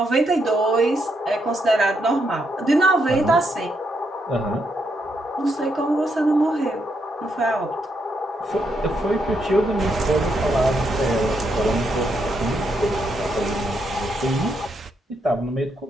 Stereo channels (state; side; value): normal; both; correlation 0.78